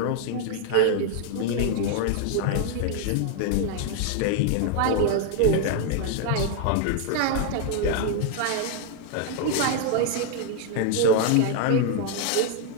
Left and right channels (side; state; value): both; different; correlation 0.00